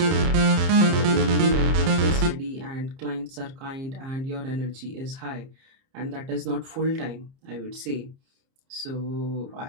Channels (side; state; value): left; late; 30 ms